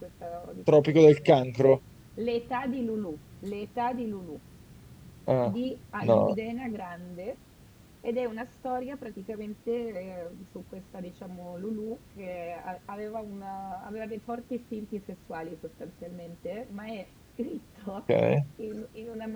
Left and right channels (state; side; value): identical; both; correlation 1.00